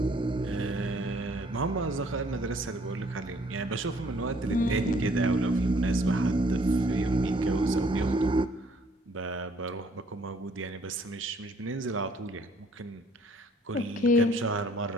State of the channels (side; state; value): both; normal; correlation 0.61